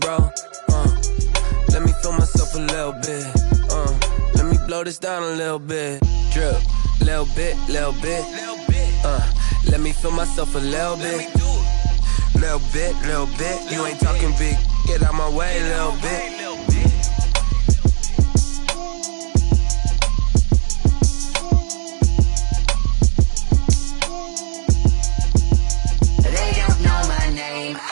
Let me feel myself a little bit. Let me blow this down a little bit. Drip, little bit, little bit. Let me feel myself a little bit. Little bit, little bit. You ain't talking big. Get out my way, little bit.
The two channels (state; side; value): silent; left; 64 dB below the other